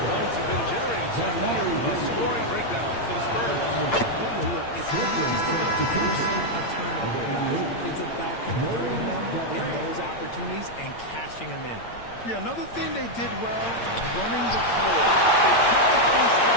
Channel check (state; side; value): late; right; 8.7 ms